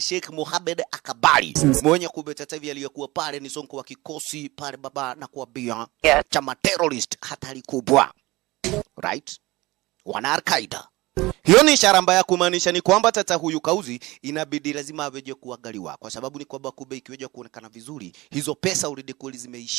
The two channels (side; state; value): left; quieter; 20.5 dB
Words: Mohammed Al-Kabiri. Mwenye kubeta hivi aliyekuwa pale ni sonko wa kikosi pale baba na kuambia chama terrorist hatari kubwa. Right? Wana Al-Qaeda. Hiyo ni ishara mbaya kumaanisha ni kwamba tata huyu kauzi inabidi lazima aweje kuangaliwa, kwa sababu ni kwamba kumbe ikiweje kuonekana vizuri hizo pesa already kweli